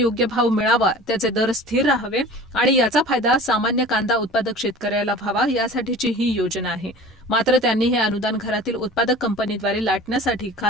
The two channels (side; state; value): both; normal; correlation 0.41